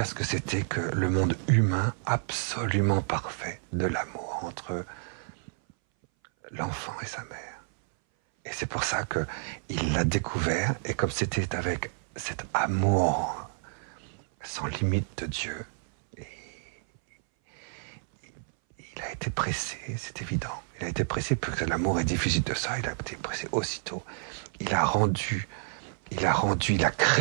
ce que c'était que le monde humain absolument parfait de l'amour entre l'enfant et sa mère. Et c'est pour ça qu'il l'a découvert, et comme c'était avec cet amour sans limite de Dieu, il a été pressé, c'est évident. Il a été pressé, parce que l'amour est difficile de ça, il a été pressé aussitôt. Il a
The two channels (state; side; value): silent; left; 58 dB below the other